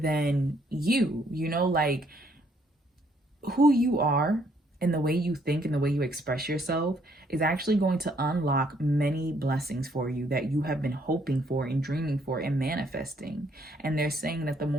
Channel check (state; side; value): normal; both; correlation 0.68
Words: you, like who you are and the way you think and the way you express yourself is actually going to unlock many blessings for you that you have been hoping for and dreaming for and manifesting. And they're saying that the